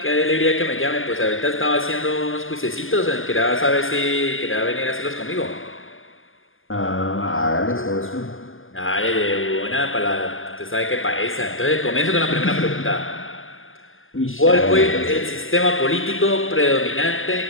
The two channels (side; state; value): right; late; 0.59 ms